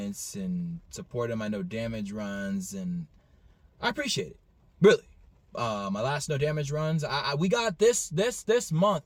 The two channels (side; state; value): both; identical; correlation 1.00